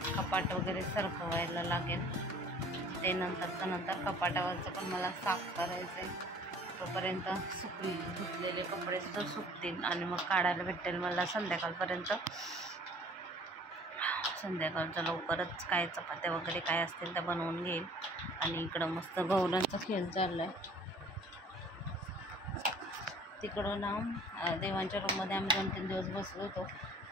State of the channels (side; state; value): both; normal; correlation 0.51